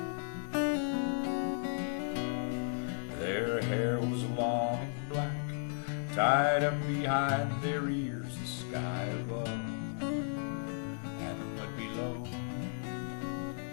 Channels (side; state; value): right; silent; digital silence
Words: Their hair was long and black, tied up behind their ears. The sky above and the mud below.